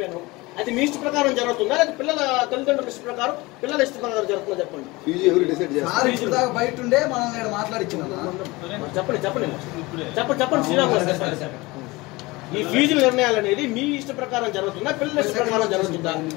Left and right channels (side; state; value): right; quieter; 22.4 dB